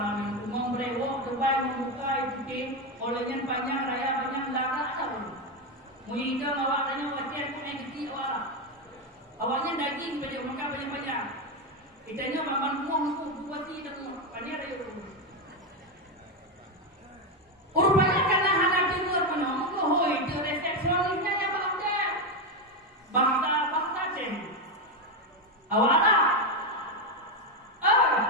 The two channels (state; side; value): normal; both; correlation 0.09